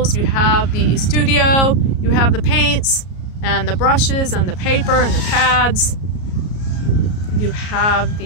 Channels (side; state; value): right; late; 33 ms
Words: you have the studio, you have the paints and the brushes and the paper and the pads, you have